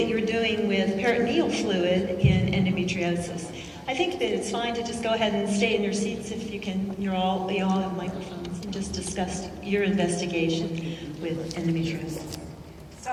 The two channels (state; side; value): identical; both; correlation 1.00